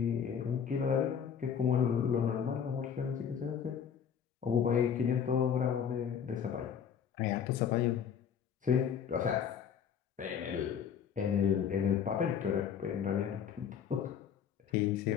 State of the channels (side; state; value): right; quieter; 7.8 dB